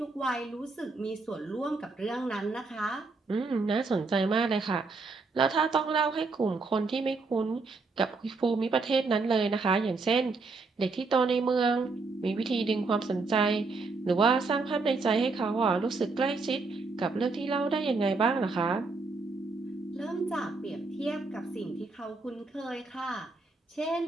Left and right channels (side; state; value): left; quieter; 3.9 dB